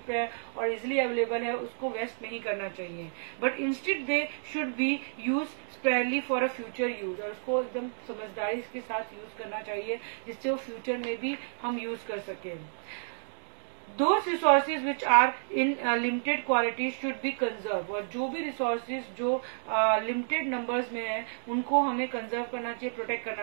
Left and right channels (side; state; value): left; silent; digital silence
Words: है और इजिली अवेलेबल है उसको वेस्ट नहीं करना चाहिए, but instead they should be use sparingly for a future use, और उसको एकदम समझदारी के साथ यूज करना चाहिए जिससे वो फ्यूचर में भी हम यूज कर सके। Those resources which are in limited quality should be conserved। और जो भी resources जो limited numbers में है उनको हमें conserve करना चाहिए, protect